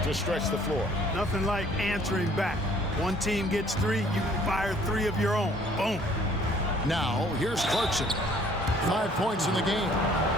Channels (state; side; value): normal; both; correlation 0.58